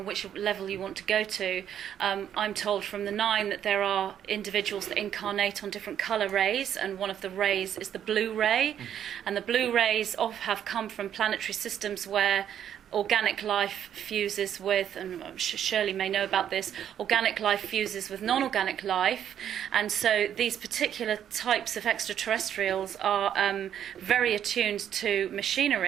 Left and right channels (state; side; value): quieter; left; 9.7 dB